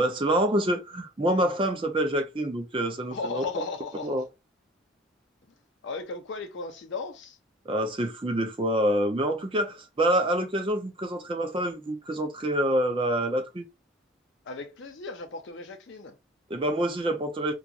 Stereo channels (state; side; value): normal; both; correlation 0.45